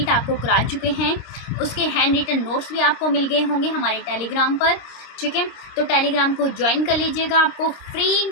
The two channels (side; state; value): right; late; 26 ms